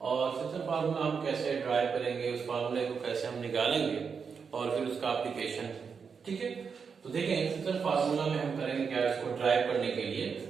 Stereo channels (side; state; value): left; quieter; 5.9 dB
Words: और सेक्शन फार्मूला हम कैसे ड्राइव करेंगे, उस फार्मूले को कैसे हम निकालेंगे और फिर उसका एप्लीकेशन। ठीक है, तो देखें सेक्शन फार्मूला में हम करेंगे क्या, इसको ड्राइव करने के लिए